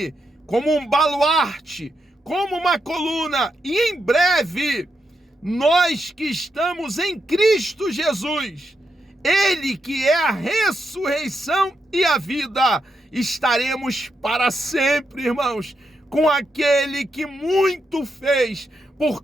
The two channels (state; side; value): normal; both; correlation 0.83